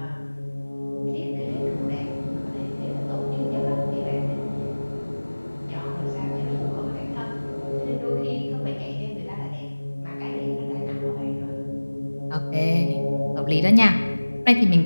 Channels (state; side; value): inverted; both; correlation -1.00